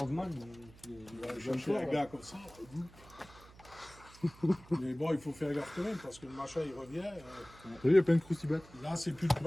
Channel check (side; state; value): right; noise; hum, 22 dB below the sound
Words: Je fais un gars comme ça. Mais bon, il faut faire gaffe quand même parce que le machin il revient. Il y a plein de croustibates. Là, c'est plus le